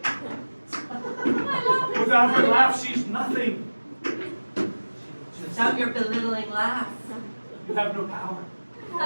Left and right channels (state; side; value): inverted; both; correlation -1.00